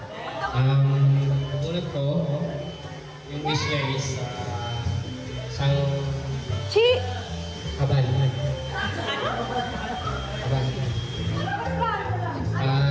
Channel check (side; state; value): both; identical; correlation 1.00